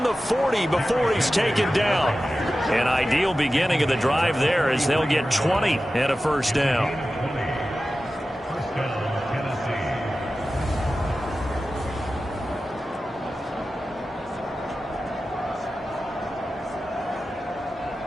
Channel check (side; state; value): both; normal; correlation 0.94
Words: the 40 before he's taken down. An ideal beginning of the drive there as they'll get 20 and a first down.